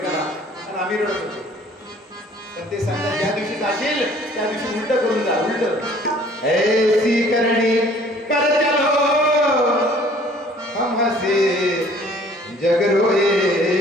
आणि आम्ही रडत होतो. पण ते सांगतात ज्या दिवशी जाशील त्या दिवशी उलट करून जा, उलट ऐसी करणी कर चलो हम हसे जग रोए.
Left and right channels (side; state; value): both; normal; correlation 0.54